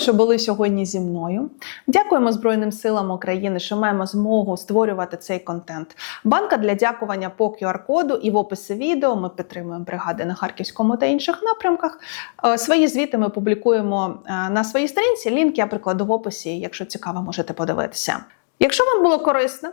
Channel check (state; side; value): silent; right; digital silence